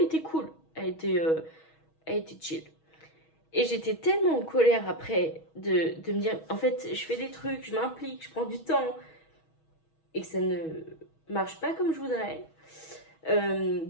était cool. Elle était chill. Et j'étais tellement en colère après de me dire, en fait, je fais des trucs, je m'implique, je prends du temps. Et que ça ne marche pas comme je voudrais.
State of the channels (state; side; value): late; right; 6.3 ms